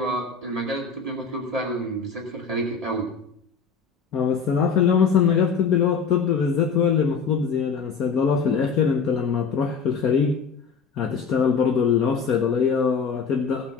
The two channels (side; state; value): right; quieter; 5.6 dB